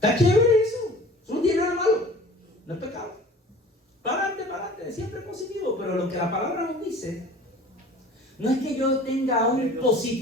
chévere eso no tiene nada malo, no es pecado. Para adelante, siempre positivo. Pero lo que la palabra nos dice no es que yo tenga un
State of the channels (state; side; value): normal; both; correlation 0.45